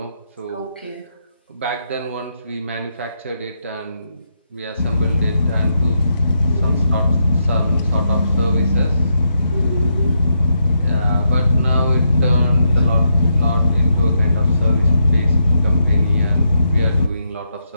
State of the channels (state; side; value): inverted; both; correlation -0.81